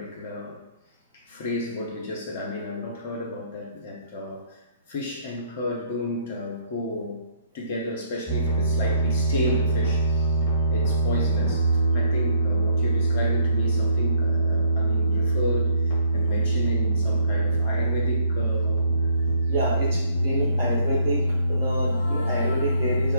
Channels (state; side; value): inverted; both; correlation -0.68